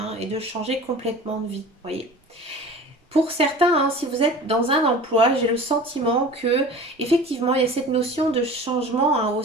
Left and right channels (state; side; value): normal; both; correlation 0.39